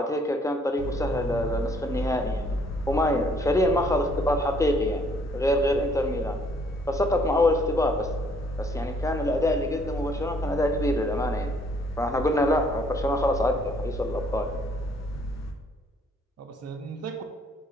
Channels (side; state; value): both; normal; correlation 0.64